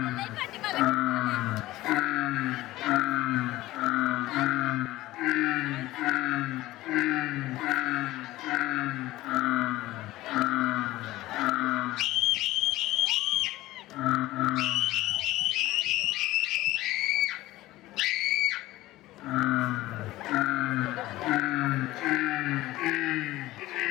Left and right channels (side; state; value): right; quieter; 17.1 dB